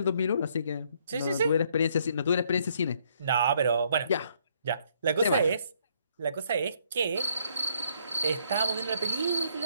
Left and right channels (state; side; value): inverted; both; correlation -0.68